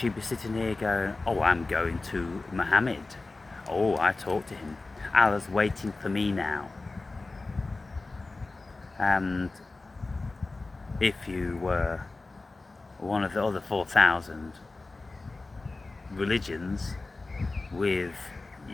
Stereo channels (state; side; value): quieter; right; 3.4 dB